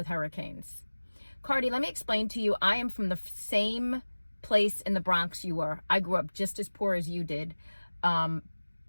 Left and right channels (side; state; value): both; inverted; correlation -1.00